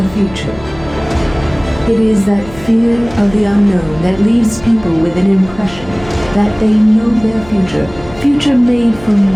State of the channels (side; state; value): left; noise; hum, 18 dB below the sound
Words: future. It is that fear of the unknown that leaves people with an impression that they know their future made